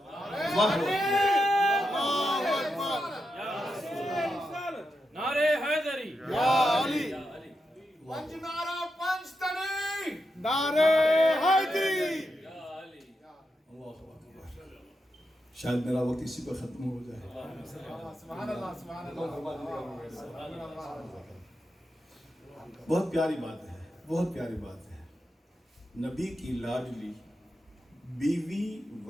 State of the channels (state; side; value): normal; both; correlation 0.86